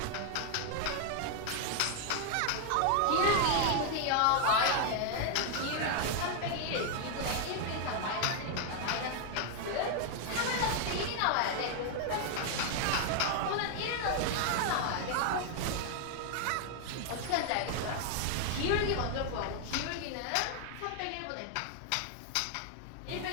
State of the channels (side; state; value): both; different; correlation 0.00